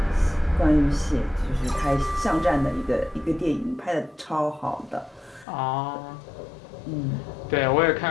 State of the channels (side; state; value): right; drops out; at 5.5 s